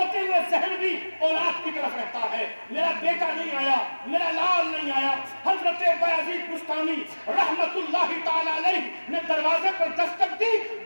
ہوئے ذہن بھی اولاد کی طرف رہتا ہے, میرا بیٹا نہیں آیا, میرا لال نہیں آیا. حضرت بایزید بستامی رحمت اللہ تعالی علیہ نے دروازے پر دستک دی.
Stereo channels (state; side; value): inverted; both; correlation -1.00